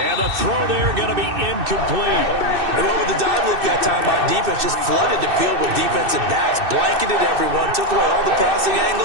the throw there going to be incomplete. And what with the dive look that time on defense, just flooded the field with defensive backs, blanketed everyone, took away all the passing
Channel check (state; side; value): late; left; 2.6 ms